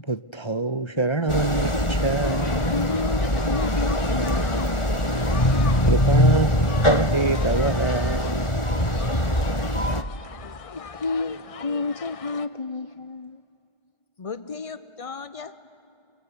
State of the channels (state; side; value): late; right; 1.4 ms